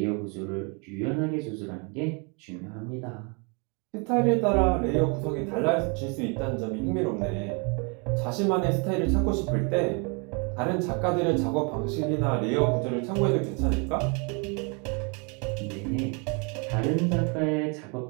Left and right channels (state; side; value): quieter; left; 34.1 dB